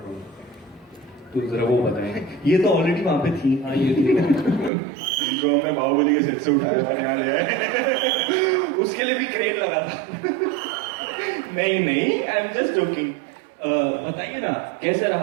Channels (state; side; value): drops out; left; at 4.7 s